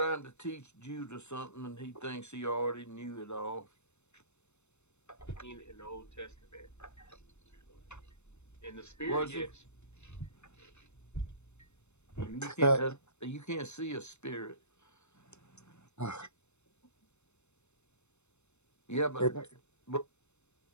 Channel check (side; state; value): right; late; 0.82 ms